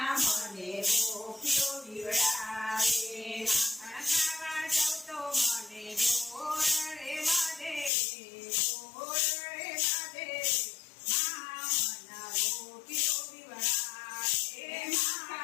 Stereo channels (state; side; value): drops out; right; at 7.9 s